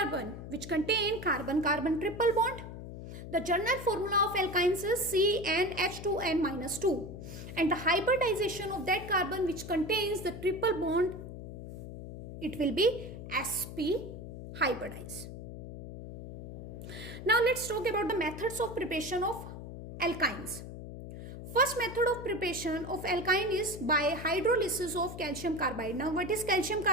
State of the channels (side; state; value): left; noise; hum, 10 dB below the sound